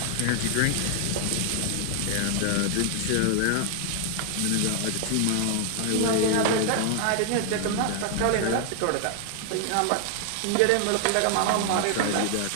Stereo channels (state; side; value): different; both; correlation 0.00